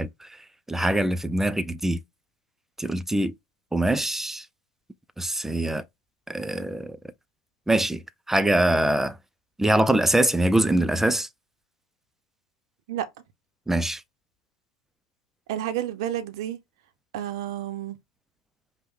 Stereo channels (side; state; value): both; normal; correlation 0.84